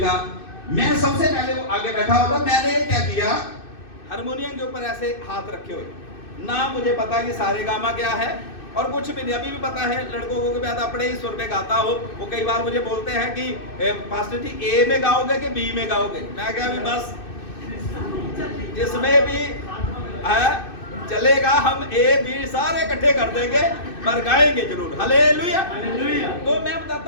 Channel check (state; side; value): late; right; 2.6 ms